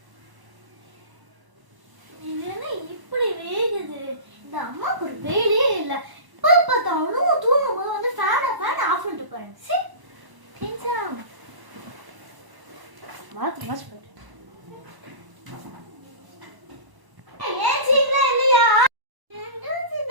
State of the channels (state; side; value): late; left; 1.0 ms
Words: இது என்ன இப்படி வேகுது? இந்த அம்மாவுக்கு ஒரு வேலையே இல்லை. இப்போ பார்த்தாலும் தூங்கும் போது வந்து ஃபேனை ஆஃப் பண்ணிட்டு போறேன். சரி மாத்து மாச்சு போயிட்டு